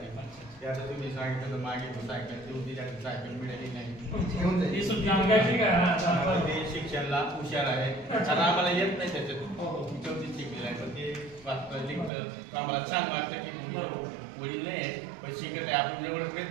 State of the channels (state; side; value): drops out; left; at 12.1 s